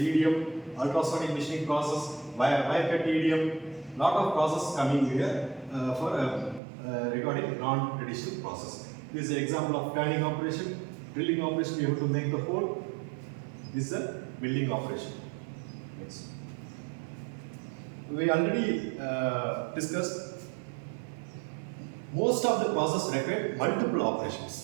ultrasonic machining process, wire cut EDM. Lot of process coming here for regarding non-traditional process. This is an example of turning operation, drilling operation. You have to make the hole. This is a milling operation. Next. We already discussed most of the process require multiple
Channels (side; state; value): left; drops out; at 6.6 s